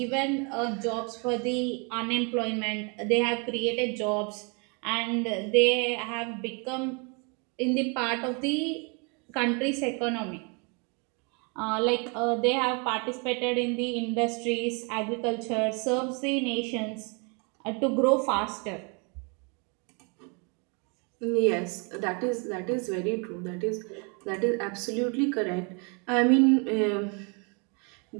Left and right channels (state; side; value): quieter; left; 33.4 dB